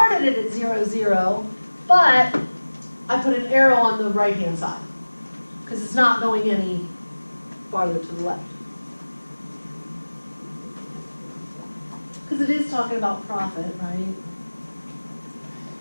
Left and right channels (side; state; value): both; inverted; correlation -1.00